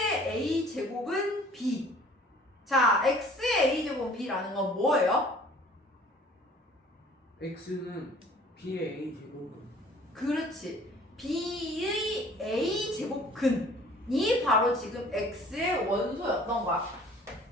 A제곱은 B. 자, X의 A제곱은 B라는 건 뭐예요? x는 b의 a 제곱은 그렇지. B의 A제곱근이 바로 지금 X의 원소였던 거야.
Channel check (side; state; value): both; normal; correlation 0.52